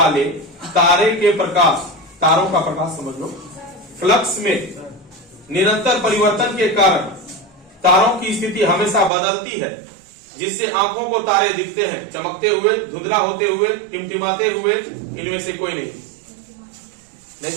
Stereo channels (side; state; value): left; drops out; at 9.1 s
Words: तारे के प्रकाश, तारों का प्रकाश समझ लो, फ्लक्स में निरंतर परिवर्तन के कारण तारों की स्थिति हमेशा बदलती है, जिससे आंखों को तारे दिखते हैं चमकते हुए, धुंधला होते हुए, टिमटिमाते हुए, इनमें से कोई नहीं